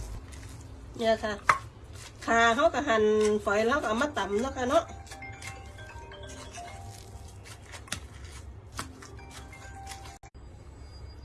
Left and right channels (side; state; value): both; identical; correlation 1.00